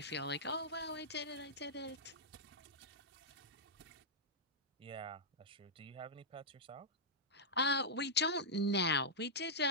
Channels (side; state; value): both; normal; correlation -0.10